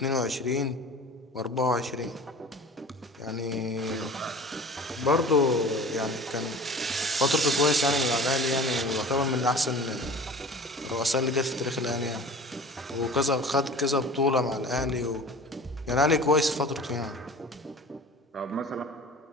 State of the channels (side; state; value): both; normal; correlation 0.41